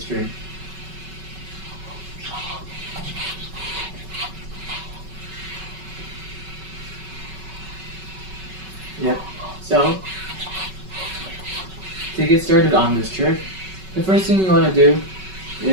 string. Yep. So, to get started on this trick, the first thing you want to do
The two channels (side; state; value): left; late; 5.3 ms